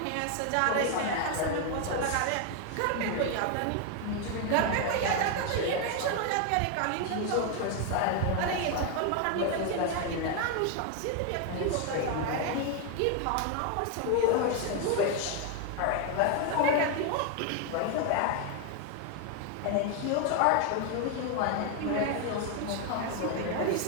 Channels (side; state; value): both; different; correlation 0.01